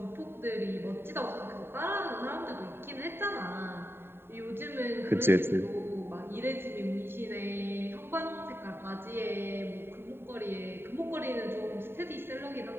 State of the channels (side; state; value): left; late; 0.11 ms